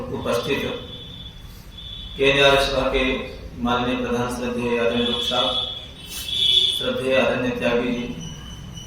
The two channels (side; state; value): both; identical; correlation 1.00